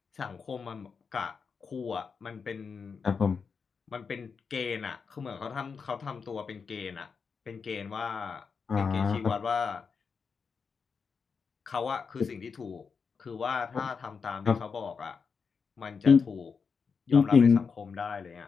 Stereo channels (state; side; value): quieter; right; 5.6 dB